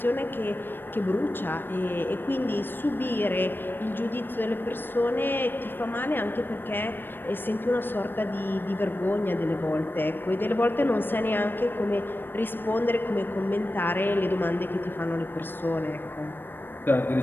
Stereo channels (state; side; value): late; right; 0.096 ms